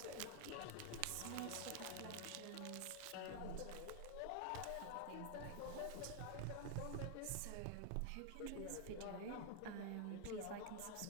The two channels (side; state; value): both; different; correlation 0.00